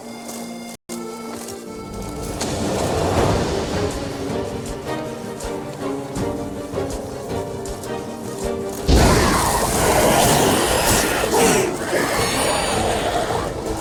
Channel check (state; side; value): identical; both; correlation 1.00